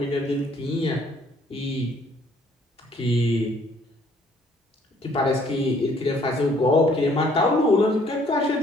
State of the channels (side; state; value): both; normal; correlation 0.62